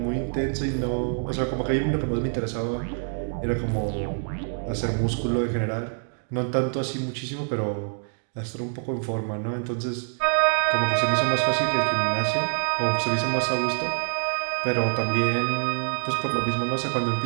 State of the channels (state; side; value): silent; left; digital silence